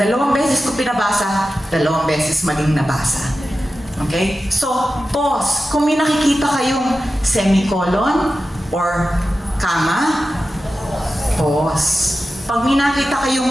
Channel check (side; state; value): both; normal; correlation 0.93